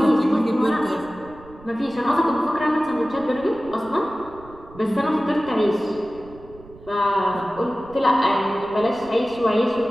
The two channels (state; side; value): noise; right; rumble, 21 dB below the sound